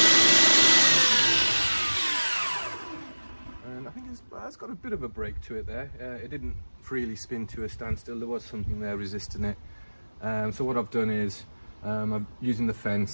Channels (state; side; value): inverted; both; correlation -1.00